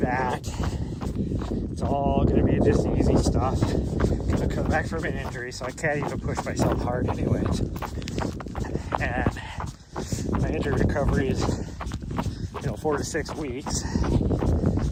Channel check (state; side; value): identical; both; correlation 1.00